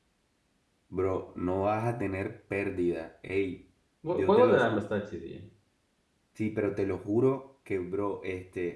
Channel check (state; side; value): identical; both; correlation 1.00